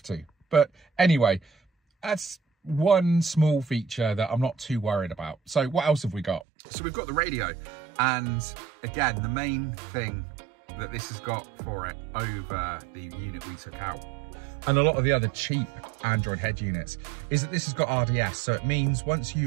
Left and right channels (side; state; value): left; drops out; at 6.5 s